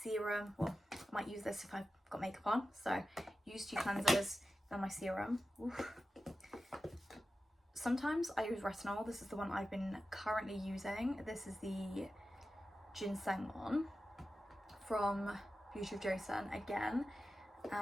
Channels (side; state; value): both; normal; correlation 0.93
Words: Well, I might use this if I've got makeup on, so use 2 cleansers, then my serum. Oof. Sometimes I use retinol. This is the one I've been currently using. This is the ginseng one from Beauty of Joseon again,